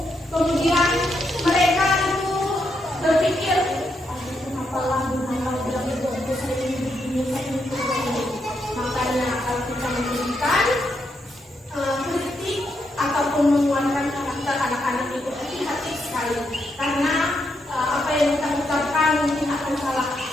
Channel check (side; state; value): both; normal; correlation 0.80